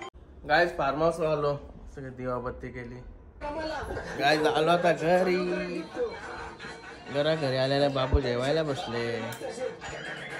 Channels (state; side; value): identical; both; correlation 1.00